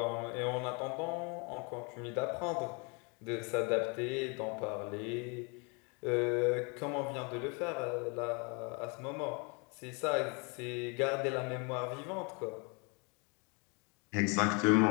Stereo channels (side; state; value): right; quieter; 32.6 dB